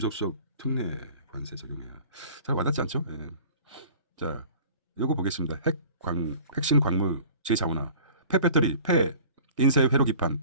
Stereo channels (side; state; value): both; inverted; correlation -0.45